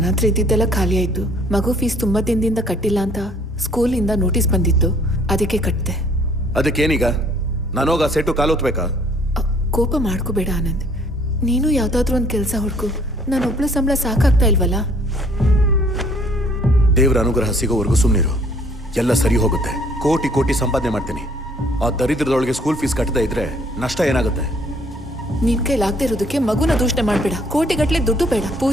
ಹತ್ರ ಇದ್ದಿದ್ದೆಲ್ಲ ಖಾಲಿ ಆಯ್ತು. ಮಗು ಫೀಸ್ ತುಂಬಾ ದಿನದಿಂದ ಕಟ್ಟಿಲ್ಲ ಅಂತ ಸ್ಕೂಲಿಂದ ನೋಟಿಸ್ ಬಂದಿತ್ತು, ಅದಕ್ಕೆ ಕಟ್ಟಿದೆ. ಅದಕ್ಕೇನೀಗ? ನಾನೋಗ ಸೆಟ್ಟು ಕಾಲೋತ್ಬೇಕಾ? ಕೋಪ ಮಾಡ್ಕೋಬೇಡ ಆನಂದ್. ನೀನು ಯಾವ್ದಾದ್ರೂ ಒಂದು ಕೆಲಸ ಹುಡ್ಕು. ನಾನೊಬ್ಳು ಸಂಬಳ ಸಾಕಾಗ್ತಾ ಇಲ್ವಲ್ಲ. ದೇವರ ಅನುಗ್ರಹ ಸಿಗೋವರೆಗೂ ಸುಮ್ಮನಿರು, ಎಲ್ಲ ಸರಿ ಹೋಗುತ್ತೆ. ಕೋಟಿ ಕೋಟಿ ಸಂಪಾದನೆ ಮಾಡ್ತೀನಿ. ಆ ದರಿದ್ರದೊಳಗೆ ಸ್ಕೂಲ್ ಫೀಸ್ ಕಟ್ಟದೇ ಇದ್ರೆ ನಷ್ಟ ಏನಾಗುತ್ತೆ? ನಿನ್ ಕೈಲಾಗದೆ ಇರೋದಕ್ಕೆ ಮಗುನ ದೂಷಣೆ ಮಾಡ್ಬೇಡ. ಕೋಟಿಗಟ್ಲೆ ದುಡ್ಡು ಬೇಡ.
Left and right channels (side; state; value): both; normal; correlation 0.60